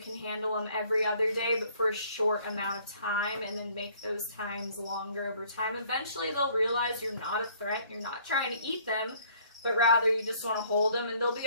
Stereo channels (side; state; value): both; inverted; correlation -0.60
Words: handle them every other day, but for a short amount of time, and then make those times longer over time. Eventually, they'll realize you're not a threat, you're not trying to eat them, but rather you just want to hold them, and they'll